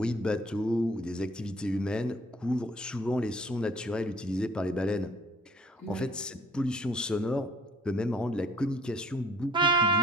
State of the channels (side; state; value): both; normal; correlation 0.56